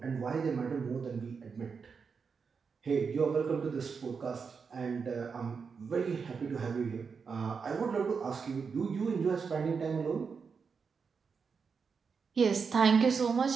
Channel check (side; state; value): left; quieter; 5.6 dB